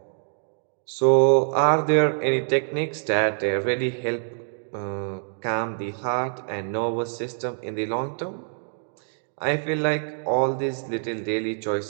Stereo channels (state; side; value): silent; left; digital silence